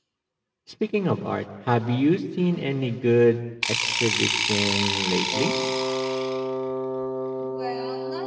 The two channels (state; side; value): identical; both; correlation 1.00